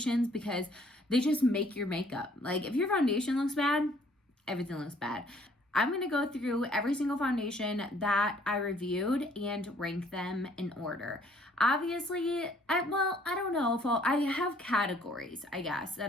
because they just make your makeup. Like if your foundation looks bad, everything looks bad. I'm going to go through every single foundation that I reviewed and rank them in order. Obviously, I don't know if I have categories, I guess,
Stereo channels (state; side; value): normal; both; correlation 0.61